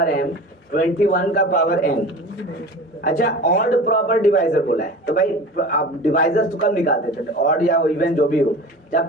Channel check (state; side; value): normal; both; correlation 0.36